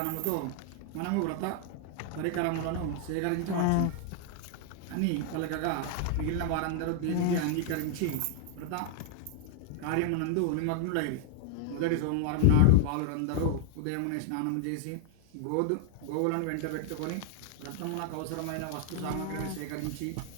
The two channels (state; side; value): different; both; correlation -0.01